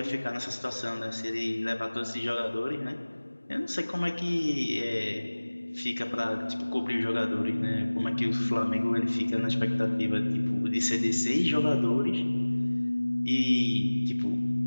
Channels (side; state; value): both; inverted; correlation -1.00